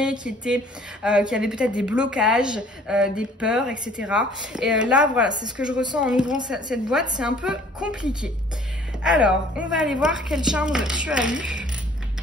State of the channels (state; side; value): normal; both; correlation 0.55